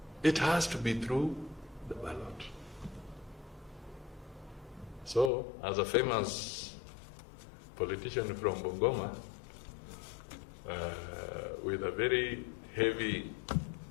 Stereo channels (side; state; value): right; drops out; at 5.3 s